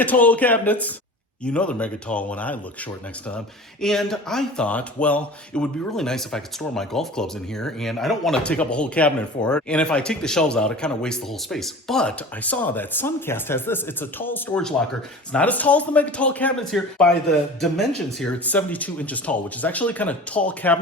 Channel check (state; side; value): normal; both; correlation 0.38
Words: tall cabinets. You know they're mega tall when I look short next to them. And I thought, well, it would be really nice if I could store my golf clubs in here, and I don't want to take up a whole cabinet for it. And if I take the shelves out, it kind of wastes the whole space. But I saw that Suncast has this. It's a tall storage locker. It's not as tall as the mega tall cabinets here. By the dimensions here, it's 72 inches tall, which is actually kind of tall